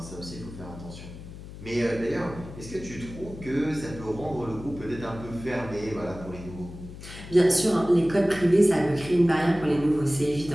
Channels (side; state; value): left; noise; hum, 14 dB below the sound